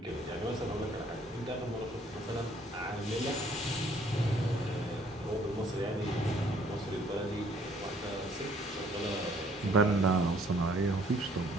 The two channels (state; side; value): normal; both; correlation 0.61